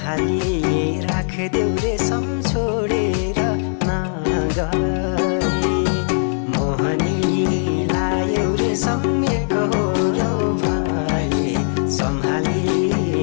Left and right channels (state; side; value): silent; right; digital silence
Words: सम्हाली राखदेऊ रेशम छोडेर नगए मोहनी लायौ रेशम एकहोरो भए